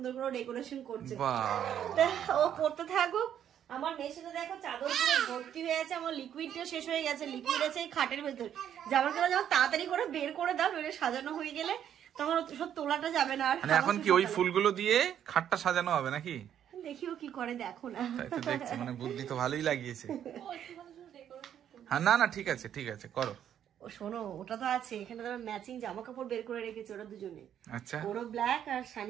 করে ডেকোরেশন করছে। ও করতে থাকুক। আমার মেশিনে দেখো চাদর পুরো ভর্তি হয়ে আছে, আমার লিকুইডটা শেষ হয়ে গেছে। লিকুইড আছে এই খাটের ভেতর। জামার কাপড় যখন তাড়াতাড়ি করে বের করে দাও, নইলে সাজানো হয়ে গেলে তখন সব তোলাটা যাবে না। আর এখন কি ওই ফুলগুলো দিয়ে খাটটা সাজানো হবে নাকি? দেখিও কি করে, দেখো না। দেখছি, মানে বুদ্ধি তো ভালোই লাগিয়েছে। হ্যাঁ, না না ঠিক আছে ঠিক আছে, করো। ও শোনো, ওটা তো আছে এখানে, তো ম্যাচিং জামা কাপড় বের করে রেখেছে ওরা দুজনে। আচ্ছা, ওরও ব্ল্যাক আর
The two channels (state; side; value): quieter; left; 9.8 dB